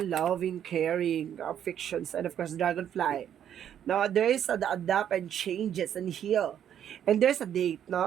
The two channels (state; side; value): quieter; left; 9.7 dB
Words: loving, caring, affections, and of course, dragonfly. Now, there is the adapt and changes and heal. And there's a date,